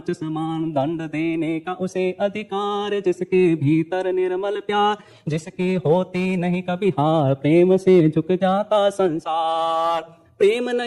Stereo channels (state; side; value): identical; both; correlation 1.00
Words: समान। दंड देने का उसे अधिकार, जिसके भीतर निर्मल प्यार, जिसकी होती नहीं कभी हार, प्रेम से झुक जाता संसार। प्रेम